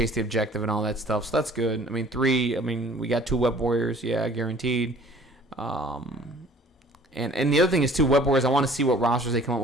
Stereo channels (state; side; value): normal; both; correlation 0.52